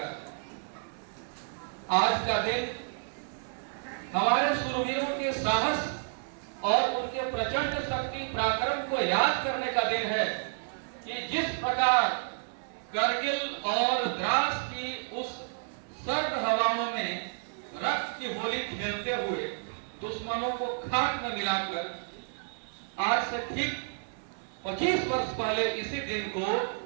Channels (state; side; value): silent; left; digital silence